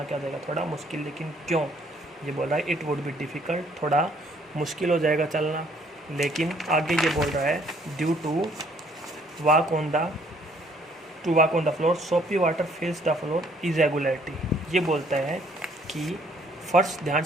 क्या हो जाएगा, थोड़ा मुश्किल। लेकिन क्यों, ये बोल रहा है इट वुड बी डिफ़िकल्ट, थोड़ा मुश्किल हो जाएगा चलना। लेकिन आगे ये बोल रहा है due to walk on the floor soapy water fills the floor irregularity, ये बोलता है कि फर्श ध्यान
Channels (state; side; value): normal; both; correlation 0.63